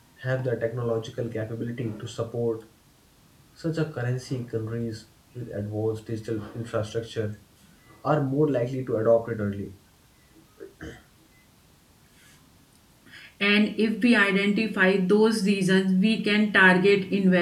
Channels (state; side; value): identical; both; correlation 1.00